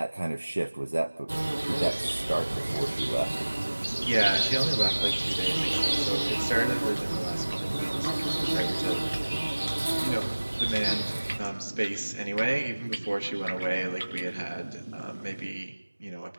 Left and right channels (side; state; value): both; inverted; correlation -1.00